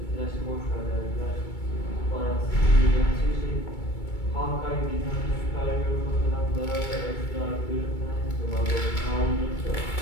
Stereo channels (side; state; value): right; late; 2.3 ms